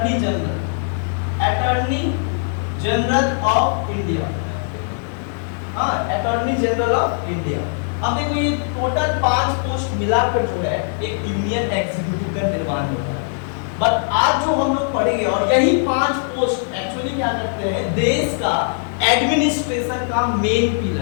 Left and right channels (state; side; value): silent; right; 66 dB below the other